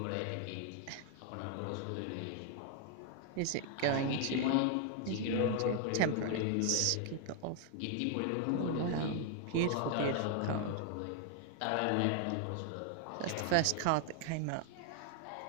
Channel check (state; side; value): different; both; correlation 0.00